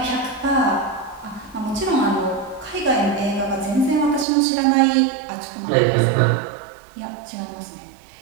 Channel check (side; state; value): left; drops out; at 4.2 s